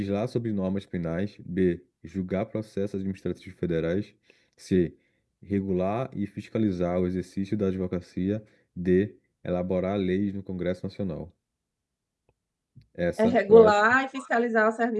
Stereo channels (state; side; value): identical; both; correlation 1.00